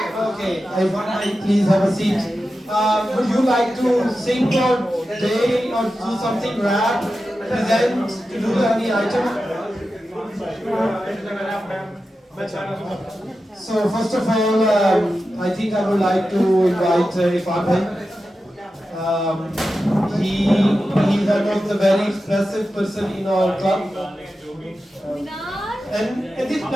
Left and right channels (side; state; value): both; normal; correlation 0.92